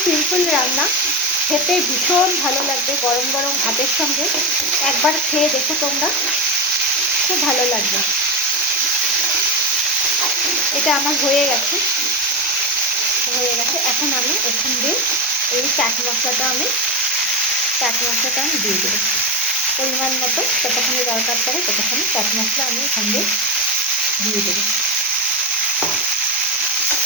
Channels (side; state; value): both; normal; correlation 0.13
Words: সিম্পল রান্না, খেতে ভীষণ ভালো লাগবে গরম গরম ভাতের সঙ্গে। একবার খেয়ে দেখো তোমরা, খুব ভালো লাগবে। এটা আমার হয়ে গেছে। এখন আমি এখান দিয়ে এই চাট মশলাটা আমি দিয়ে দেবো পরিমাণ মতো। যতখানি দরকার পড়ে ততখানি চাট মশলা আমি এখান দিয়ে দেবো।